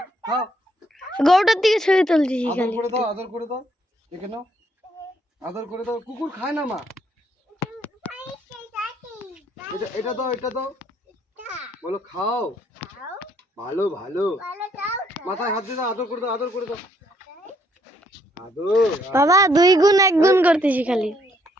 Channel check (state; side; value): normal; both; correlation 0.70